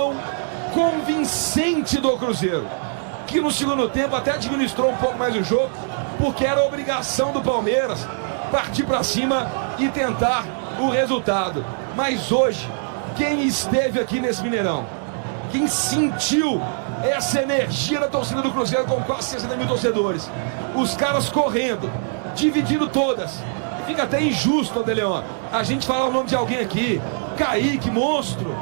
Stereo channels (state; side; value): silent; left; digital silence